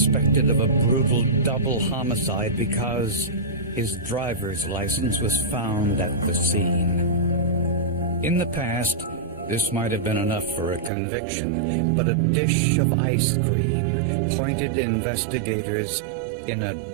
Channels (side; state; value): left; drops out; at 10.9 s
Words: of a brutal double homicide because his driver's license was found at the scene. In the past, this might have been enough for a conviction, but a dish of ice cream pointed investigators in a